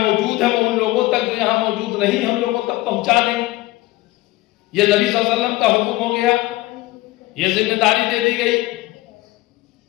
ہیں وہ ان لوگوں تک جو یہاں موجود نہیں ہیں ان لوگوں تک پہنچا دیں۔ یہ نبی صلی اللہ علیہ وسلم کا حکم ہو گیا، یہ ذمہ داری دے دی گئی۔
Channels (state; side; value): quieter; right; 19.1 dB